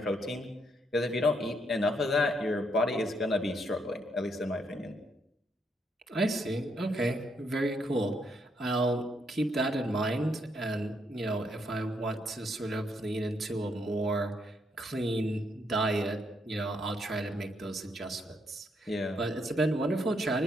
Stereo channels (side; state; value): both; normal; correlation 0.75